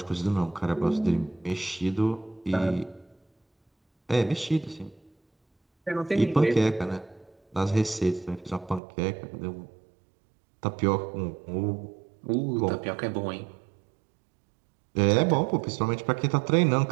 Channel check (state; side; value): drops out; left; at 8.8 s